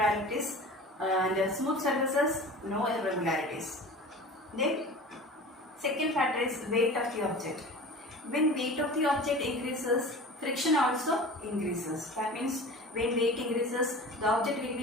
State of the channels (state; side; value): normal; both; correlation 0.37